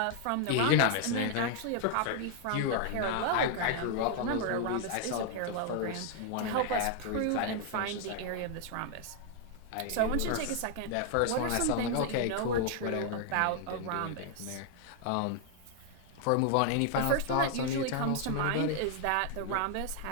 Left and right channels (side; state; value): both; different; correlation 0.00